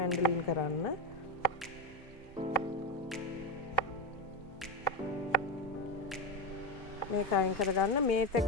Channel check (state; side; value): normal; both; correlation 0.14